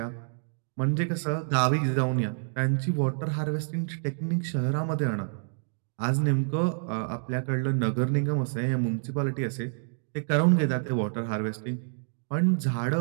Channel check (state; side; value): silent; left; digital silence